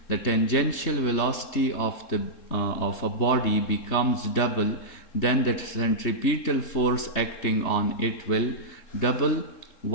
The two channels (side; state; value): right; late; 3.3 ms